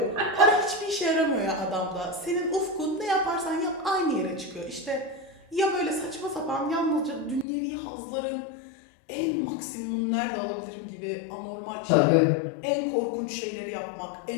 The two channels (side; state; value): right; drops out; at 7.5 s